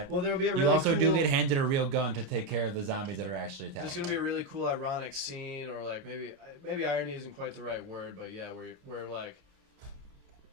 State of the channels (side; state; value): left; late; 29 ms